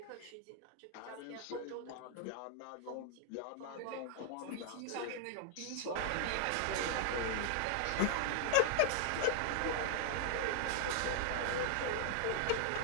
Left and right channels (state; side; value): different; both; correlation 0.00